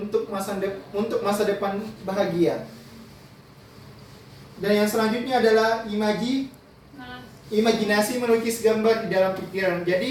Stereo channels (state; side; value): identical; both; correlation 1.00